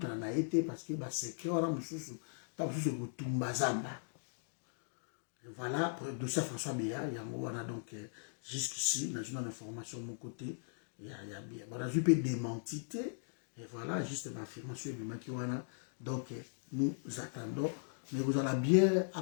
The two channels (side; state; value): right; silent; digital silence